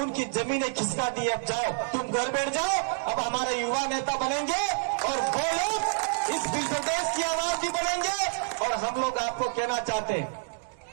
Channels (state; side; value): silent; left; digital silence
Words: जमीनें खिसका दी। अब जाओ, तुम घर बैठ जाओ, अब हमारे युवा नेता बनेंगे और वो लोग इस भील प्रदेश की आवाज भी बनेंगे। और हम लोग आपको कहना चाहते हैं,